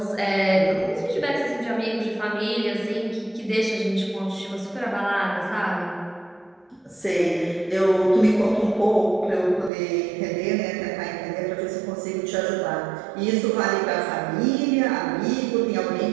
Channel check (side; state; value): left; drops out; at 9.7 s